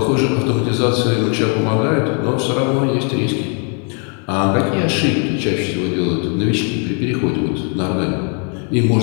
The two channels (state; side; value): quieter; right; 39.5 dB